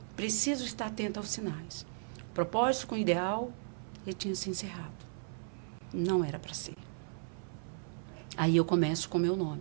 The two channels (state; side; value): silent; left; 54 dB below the other